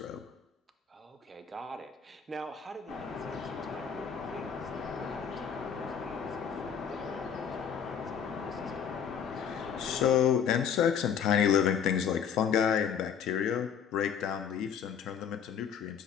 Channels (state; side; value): quieter; right; 7.6 dB